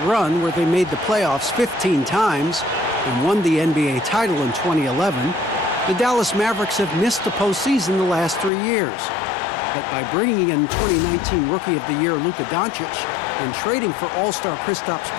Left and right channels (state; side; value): drops out; right; at 8.5 s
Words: run where they made the playoffs 15 times and won the NBA title in 2011, the Dallas Mavericks have missed the postseason the last 3 years. But by bringing in 2019 Rookie of the Year Luka Doncic and trading for All-Star Kristaps